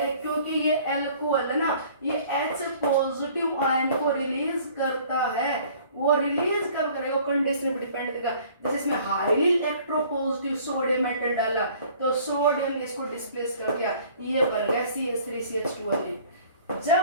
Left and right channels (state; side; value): inverted; both; correlation -0.53